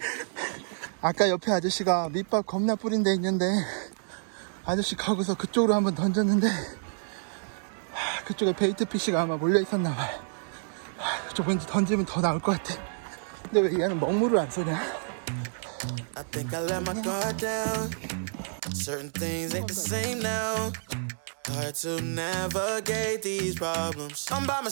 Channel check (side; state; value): left; silent; digital silence